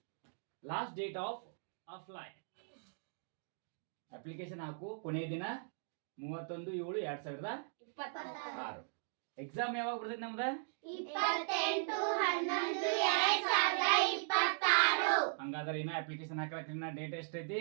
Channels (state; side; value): silent; left; digital silence